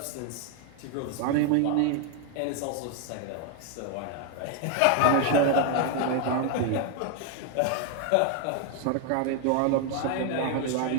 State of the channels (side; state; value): both; different; correlation 0.01